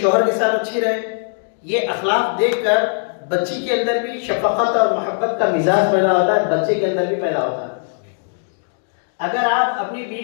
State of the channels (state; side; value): silent; right; digital silence